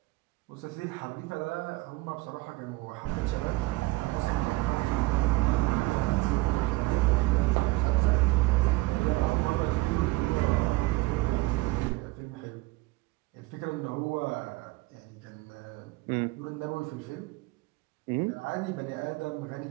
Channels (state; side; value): quieter; left; 21.4 dB